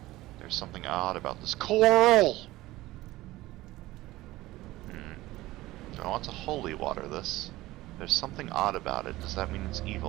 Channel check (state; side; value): quieter; left; 17.8 dB